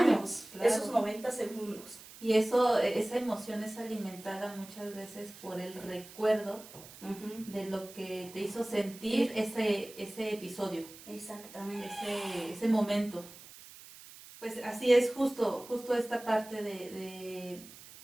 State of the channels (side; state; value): right; noise; hiss, 18 dB below the sound